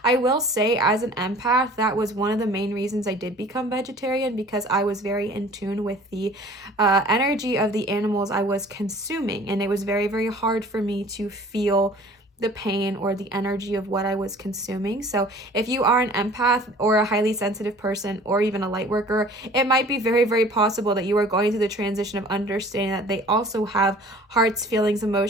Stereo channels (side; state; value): both; normal; correlation 0.48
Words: I will say, as an empath, that was one of the main reasons I did become vegetarian, because I was very in tune with the energy of the animals I was consuming, and it was very, very hard for me to feel the pain or the energy of what I was consuming. So if you are an empath or a highly sensitive person or even a light worker, it might be very, very possible that you are going through the transition of understanding that they also have hearts, feelings,